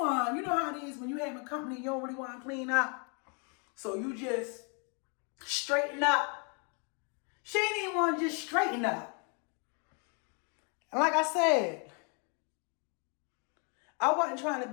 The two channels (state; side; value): quieter; right; 37.3 dB